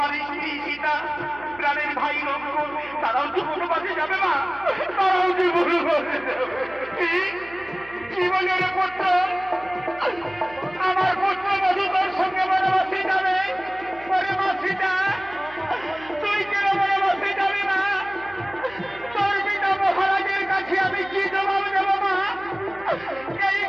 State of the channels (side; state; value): right; noise; hum, 22 dB below the sound